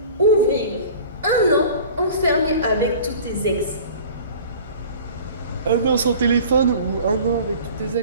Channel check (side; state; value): both; inverted; correlation -0.42